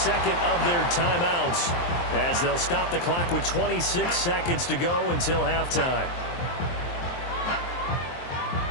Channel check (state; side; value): late; right; 23 ms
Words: of their timeouts as they'll stop the clock with 26 seconds to go until halftime.